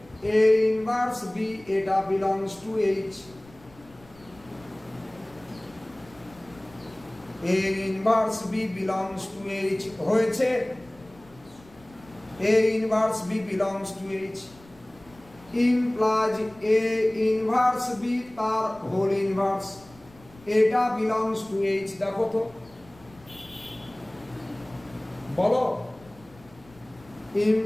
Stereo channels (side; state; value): left; noise; rumble, 25 dB below the sound